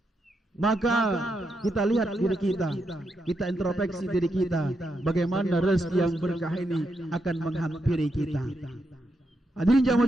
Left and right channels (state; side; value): normal; both; correlation 0.83